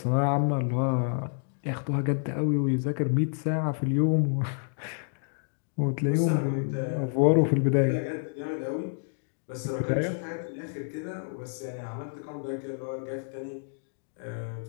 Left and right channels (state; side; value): silent; right; digital silence